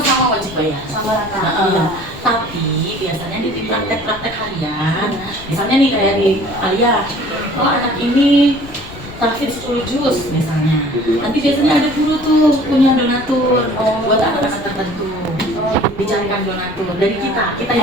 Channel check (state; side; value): noise; left; rumble, 17 dB below the sound